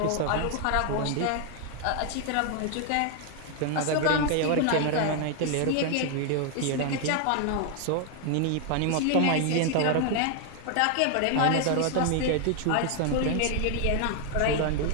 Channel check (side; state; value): both; different; correlation 0.00